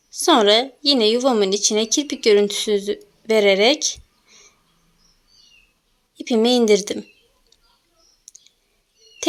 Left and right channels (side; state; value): both; identical; correlation 1.00